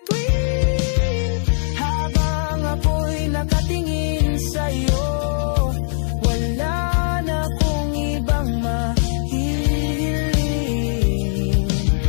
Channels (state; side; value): silent; right; digital silence